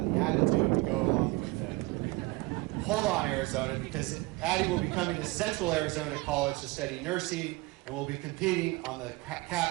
the attitude to go along with it. Hold on, Arizona, because Addie will be coming to Central Arizona College to study nursing and will be competing on the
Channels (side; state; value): left; quieter; 22.3 dB